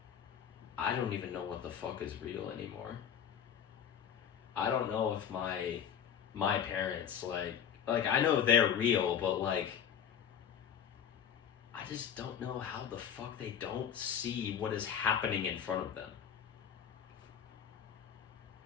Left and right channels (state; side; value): quieter; right; 8.6 dB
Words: I don't even know what the fuck is real anymore. I don't know if my parents, I know they're real, but I just don't know how the fuck they don't see what is happening in front of them.